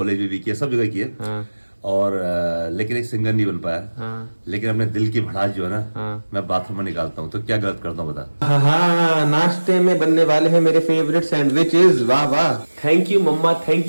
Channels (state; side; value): inverted; both; correlation -1.00